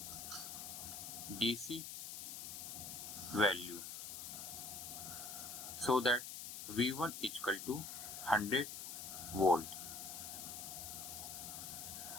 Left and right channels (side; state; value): left; noise; hiss, 7 dB below the sound